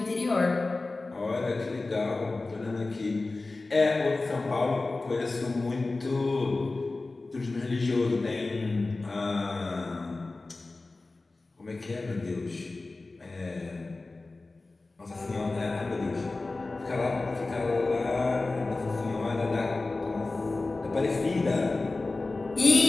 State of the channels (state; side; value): quieter; right; 3.4 dB